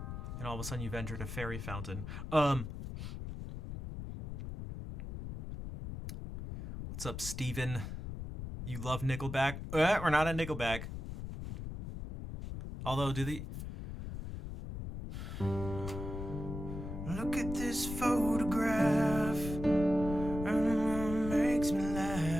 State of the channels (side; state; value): left; noise; rumble, 7 dB below the sound